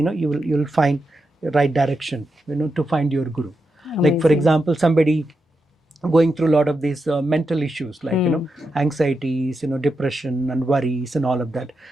you'll find the right direction, to find your guru. Amazing. Like for example, somebody going through a lot of these mental issues, like anxieties, depression and worries and all of that,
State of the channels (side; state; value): both; normal; correlation 0.87